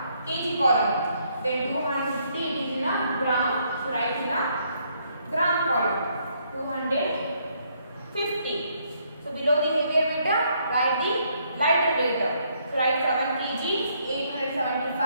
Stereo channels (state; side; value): inverted; both; correlation -0.71